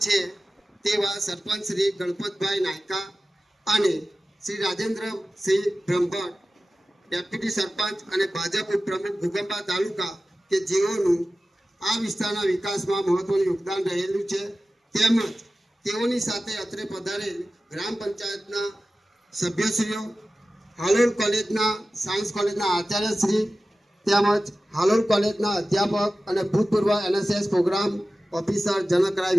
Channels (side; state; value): both; normal; correlation 0.95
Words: છે તેવા સરપંચ શ્રી ગણપતભાઈ નાયકા અને શ્રી રાજેન્દ્રસિંહ બ્રહ્મભટ્ટ, ડેપ્યુટી સરપંચ અને ભાજપ ઉપપ્રમુખ ઘોગંબા તાલુકા કે જેઓનું આ વિસ્તારના વિકાસમાં મહત્વનું યોગદાન રહેલું છે. તેમજ તેઓની સાથે અત્રે પધારેલ ગ્રામ પંચાયતના સભ્યશ્રીઓ, હાલોલ કોલેજના સાયન્સ કોલેજના આચાર્યશ્રી તેમજ હાલોલ કોલેજના અધ્યાપક અને ભૂતપૂર્વ NSS programme officer Janakrai